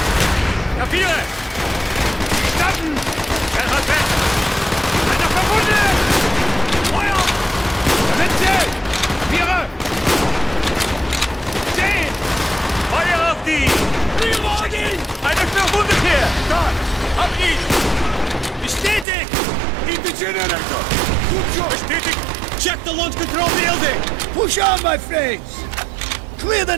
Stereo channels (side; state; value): left; drops out; at 19.1 s